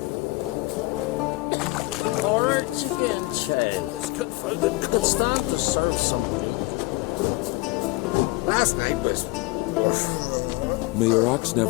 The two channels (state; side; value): quieter; right; 22.0 dB